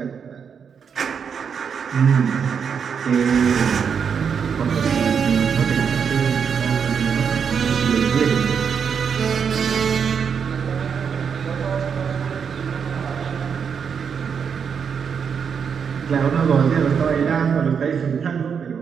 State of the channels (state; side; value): quieter; left; 6.8 dB